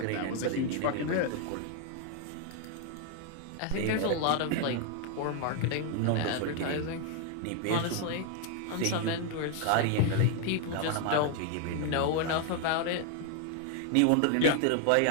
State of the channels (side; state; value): both; different; correlation 0.00